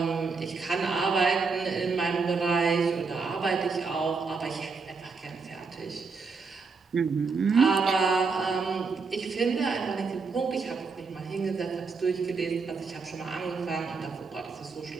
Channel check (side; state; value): left; quieter; 4.7 dB